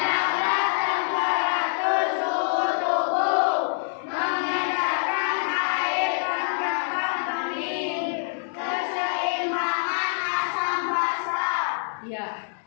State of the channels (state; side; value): silent; right; digital silence